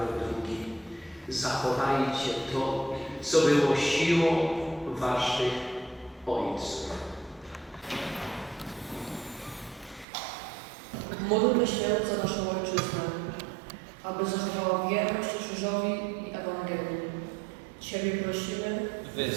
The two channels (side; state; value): left; drops out; at 10.1 s